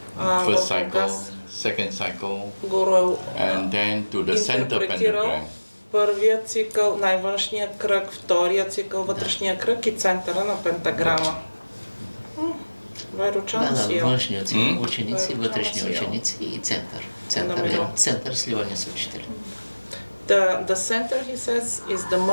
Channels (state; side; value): inverted; both; correlation -1.00